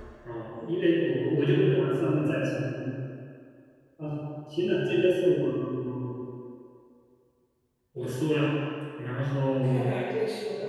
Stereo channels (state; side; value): identical; both; correlation 1.00